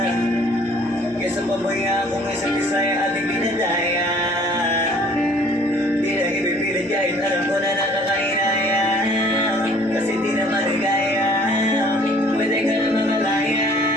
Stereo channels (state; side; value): normal; both; correlation 0.55